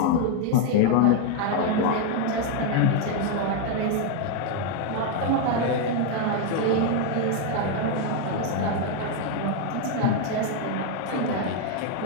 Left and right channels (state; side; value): different; both; correlation 0.01